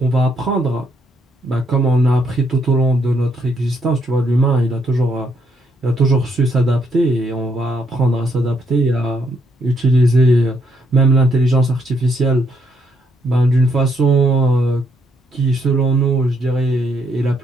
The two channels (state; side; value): normal; both; correlation 0.74